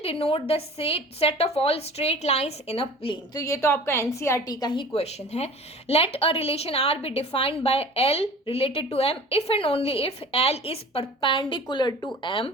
denote the set of all straight lines in a plane. तो ये तो आपका एनसीईआरटी का ही क्वेश्चन है। Let a relation R be defined by L related to M if and only if L is perpendicular to M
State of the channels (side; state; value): both; normal; correlation 0.43